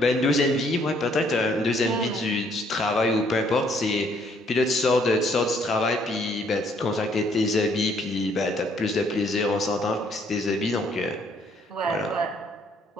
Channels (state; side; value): normal; both; correlation 0.66